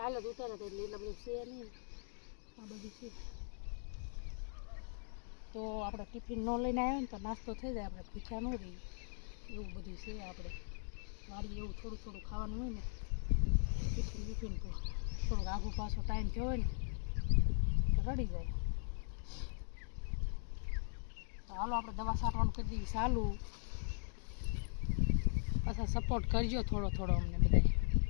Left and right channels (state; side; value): silent; right; 51 dB below the other